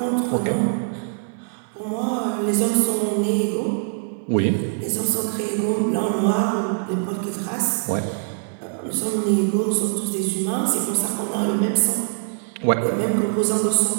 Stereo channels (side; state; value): left; silent; digital silence